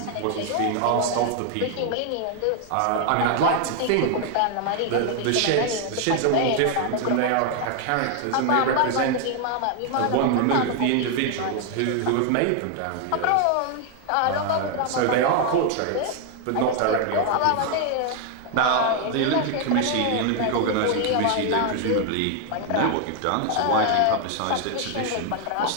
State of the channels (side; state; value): both; different; correlation 0.00